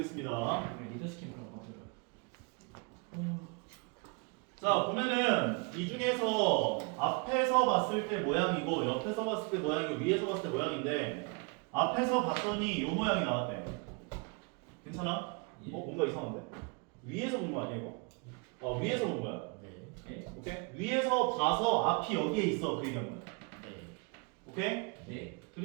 네, 리더십 그런 거 같아요. 자, 보면은 이 중에서 앞에서 봤을 때 모양이고 옆에서 봤을 때 모양이고 위에서 봤을 때 모양인데 앞에서 봤더니 요 모양이 나왔대. 괜찮아? 예. 뭔가 이상한데? 위에서 본 거 아니야 이거? 위에서 본 거야. 네. 오케이? 위에서 봐서 앞이 여기에 있어 그 얘기한 거야. 네. 오케이? 네.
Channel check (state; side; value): quieter; left; 32.0 dB